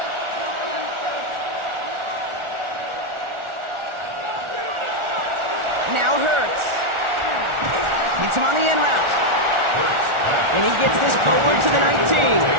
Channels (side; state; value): left; late; 1.4 ms